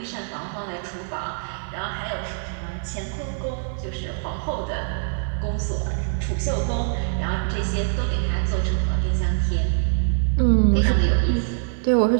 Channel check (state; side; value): silent; left; 58 dB below the other